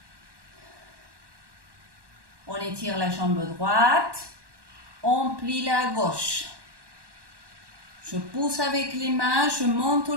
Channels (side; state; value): left; late; 1.1 ms